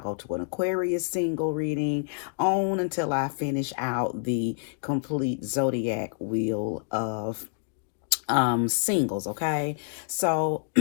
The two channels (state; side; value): silent; right; digital silence